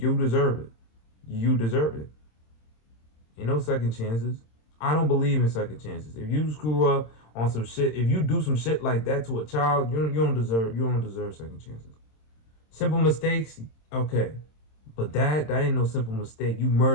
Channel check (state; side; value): late; right; 26 ms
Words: deserve it. You deserve it. Ain't no second chances. I don't believe in second chances. If you screw up on some shit, if you do some shit like that to a child, you don't deserve second chances. Simple mistakes, okay. But that ain't no simple mistake. You